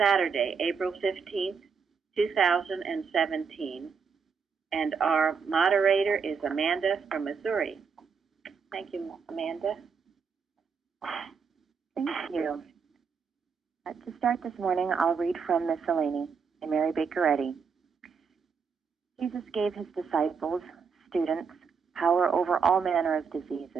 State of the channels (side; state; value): left; quieter; 5.8 dB